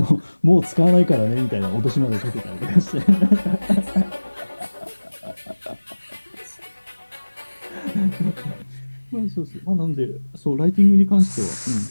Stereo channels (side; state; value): both; inverted; correlation -1.00